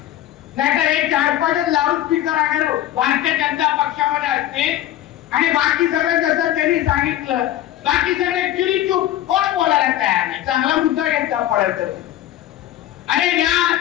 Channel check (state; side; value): quieter; right; 13.1 dB